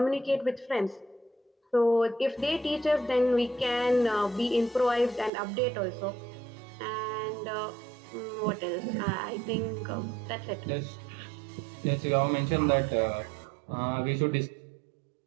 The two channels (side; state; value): left; drops out; at 5.3 s